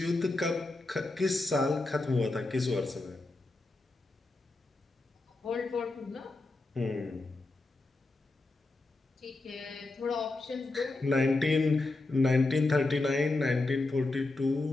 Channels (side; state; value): right; quieter; 3.1 dB